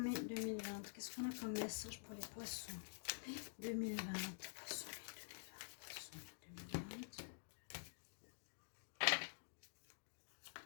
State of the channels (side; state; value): right; silent; digital silence